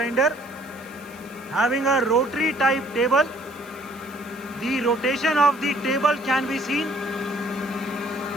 having a rotary type table. The rotation of the table can be seen.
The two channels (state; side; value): noise; left; hiss, 24 dB below the sound